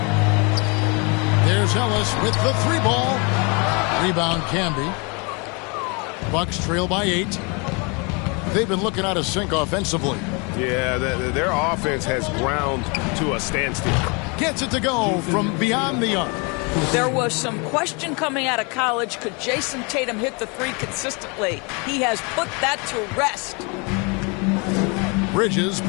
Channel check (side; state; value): right; quieter; 31.5 dB